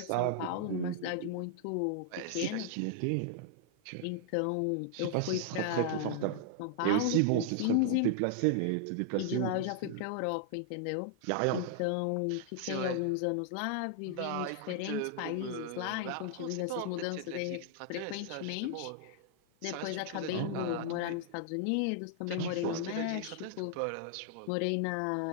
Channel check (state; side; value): different; both; correlation -0.01